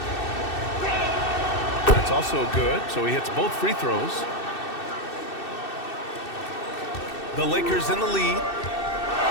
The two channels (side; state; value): right; late; 2.6 ms